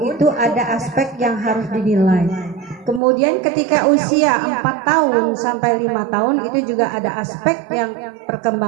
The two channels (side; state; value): left; drops out; at 3.0 s